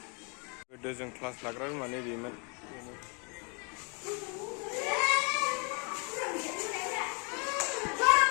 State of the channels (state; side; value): quieter; right; 35.1 dB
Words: गोदो जों क्लास लाग्रा रुमानो बेमोन